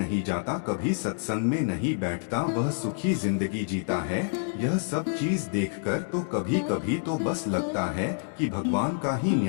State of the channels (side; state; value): right; silent; digital silence